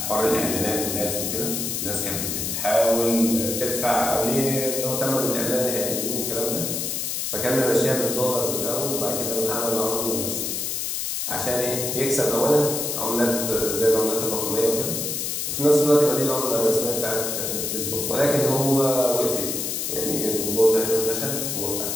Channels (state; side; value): noise; left; hiss, 2 dB below the sound